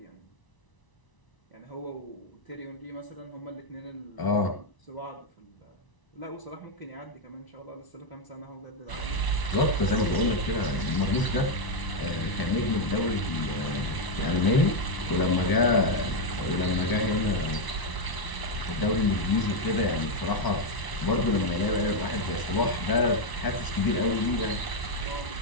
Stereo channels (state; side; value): late; right; 1.0 ms